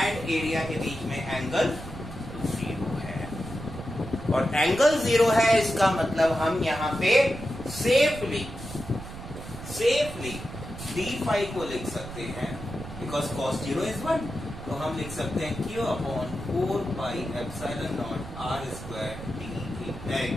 एरिया के बीच में एंगल 0 है। और एंगल 0 है, इसका मतलब हम यहाँ पे सेफली डी फाई को लिख सकते हैं, बिकॉज cos 0 is 1, तो हम लिख सकते हैं q upon 4 pi epsilon naught r square D,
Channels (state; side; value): noise; right; rumble, 12 dB below the sound